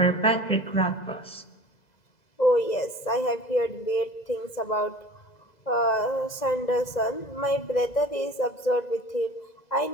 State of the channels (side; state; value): right; late; 2.0 ms